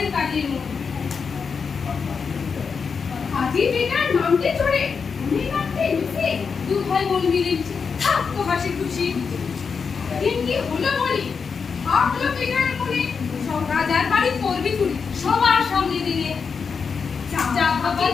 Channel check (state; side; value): quieter; right; 5.7 dB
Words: কাজের মন। হাজি বেটার নামতে চড়ে উনি নামতে লুচি, দু ভাই বোন মিলে থাকতো হাসি খুশি। দিন কি হলো বলি, ভাবলো বেটার মনে সব রাজার বাড়ি করবি চুরি, সবার সামনে দিনে যা ভাবি